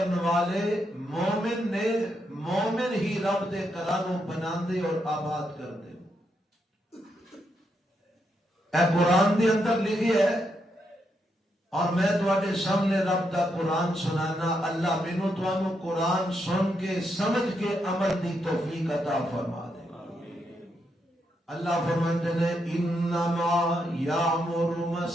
والے مومن نے، مومن ہی رب دے کرانو بناندے اور آباد کردے۔ اے قرآن دے اندر لکھی ہے، اور میں تواڈے سامنے رب دا قرآن سنانا، اللہ مینوں تانوں قرآن سن کے سمجھ کے عمل دی توفیق عطا فرما دے۔ اللہ فرماتے ہیں انما یامر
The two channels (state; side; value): normal; both; correlation 0.80